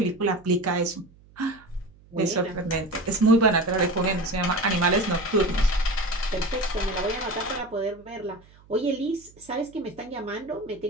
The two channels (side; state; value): right; noise; hum, 26 dB below the sound